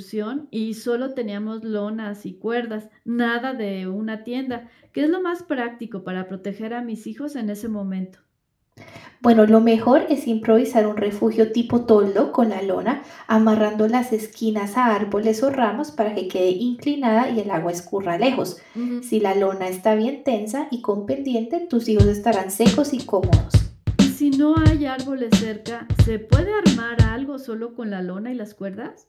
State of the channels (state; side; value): identical; both; correlation 1.00